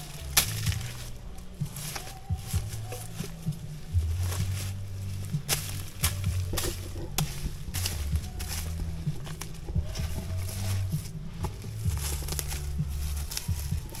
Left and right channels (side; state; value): both; identical; correlation 1.00